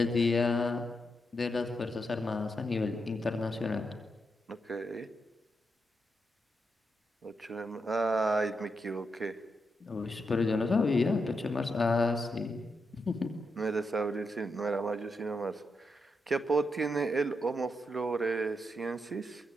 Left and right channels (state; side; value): normal; both; correlation 0.83